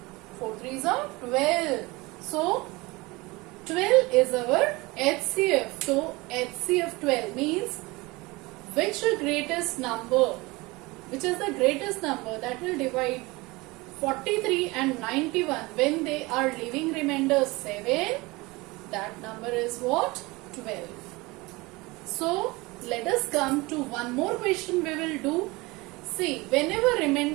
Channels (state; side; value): quieter; left; 23.0 dB